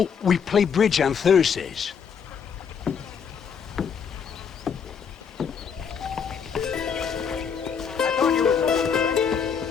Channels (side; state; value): right; quieter; 6.8 dB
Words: we play bridge on Thursdays.